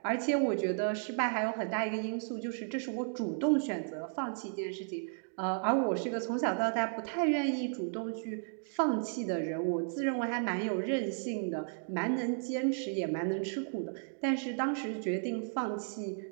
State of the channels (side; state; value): left; silent; digital silence